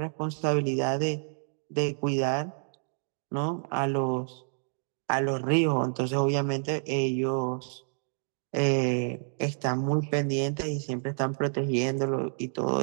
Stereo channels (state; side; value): silent; left; 59 dB below the other